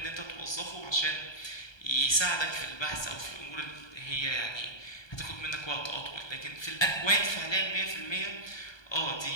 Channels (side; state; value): right; late; 1.2 ms